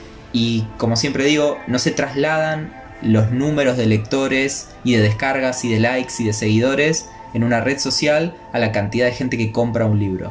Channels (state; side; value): identical; both; correlation 1.00